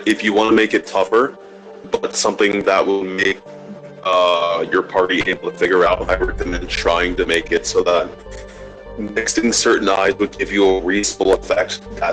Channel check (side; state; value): both; identical; correlation 1.00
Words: if you want to make it tougher, but something that will make your party able to figure out. I recommend trying to make it so that mixing certain eyes would give you a reasonable effect